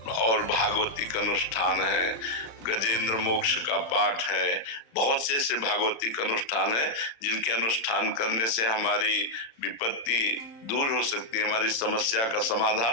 और भागवतिक अनुष्ठान है, गजेंद्र मोक्ष का पाठ है, बहुत से ऐसे भागवतिक अनुष्ठान है जिनके अनुष्ठान करने से हमारी विपत्ति दूर हो सकती है, हमारी समस्या का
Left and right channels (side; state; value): right; late; 34 ms